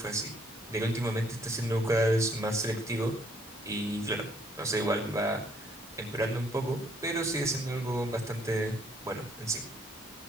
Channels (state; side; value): normal; both; correlation 0.66